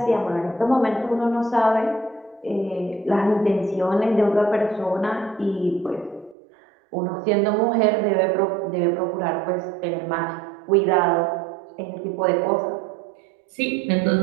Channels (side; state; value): left; drops out; at 6.4 s